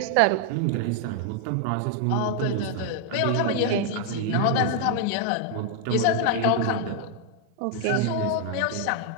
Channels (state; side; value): different; both; correlation 0.00